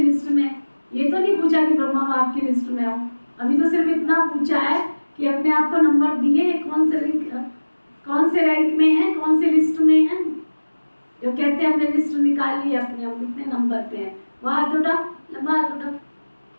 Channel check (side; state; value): both; inverted; correlation -1.00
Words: में? ये तो नहीं पूछा कि ब्रह्मा बाप की लिस्ट में हो, अभी तो सिर्फ इतना पूछा है कि अपने आप को नंबर दिए, कौन से रैंक में है, कौन सी लिस्ट में है। जो कहते हैं हमने लिस्ट निकाल ली अपने, हम कितने नंबर पे हैं, वो हाथ उठा, लंबा हाथ उठा।